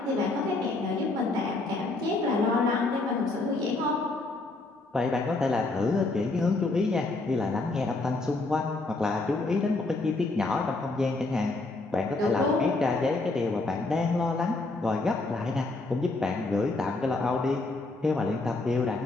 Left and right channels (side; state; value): right; quieter; 3.2 dB